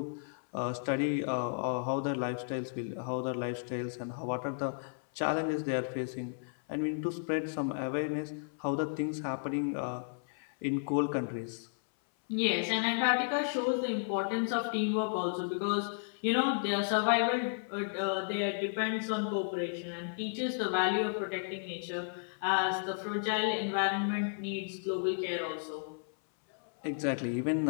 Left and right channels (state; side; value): silent; right; 55 dB below the other